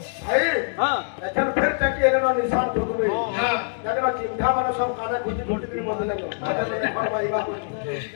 भाई लेकिन फिर तक ये ना निशान ठोक में जाके ना चिंता माने सब काने खुशी छोटी सी बदले को आगे और भाई बा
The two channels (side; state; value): right; silent; digital silence